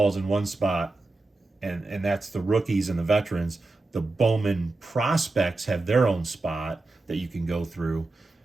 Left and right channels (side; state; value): left; quieter; 3.2 dB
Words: in one spot, and that's the rookies and the veterans. The Bowman prospects have their own spot that you can go through,